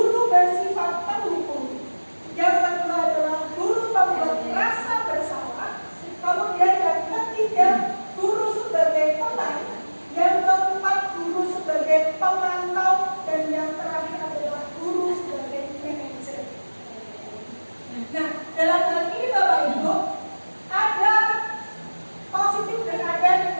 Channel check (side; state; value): both; inverted; correlation -1.00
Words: bersifat pendukung. Yang kedua adalah guru pembuat rasa bersalah. Kemudian yang ketiga, guru sebagai pemain. Yang keempat, guru sebagai pemantau. Dan yang terakhir adalah guru sebagai manajer. Nah, dalam hal ini Bapak Ibu, ada positif dan ada